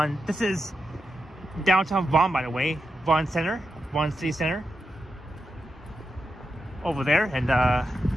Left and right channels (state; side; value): normal; both; correlation 0.87